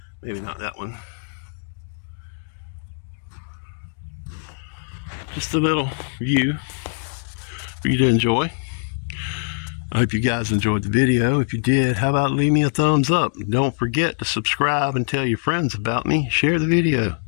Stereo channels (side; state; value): right; silent; digital silence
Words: Maybe not that one. Just a little view for you to enjoy. I hope you guys enjoyed the video. If you did, how about leave me a thumbs up? Don't forget to subscribe and tell your friends about me. Share the video.